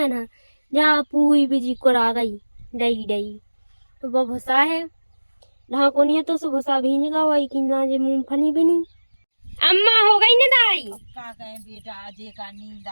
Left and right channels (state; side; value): inverted; both; correlation -1.00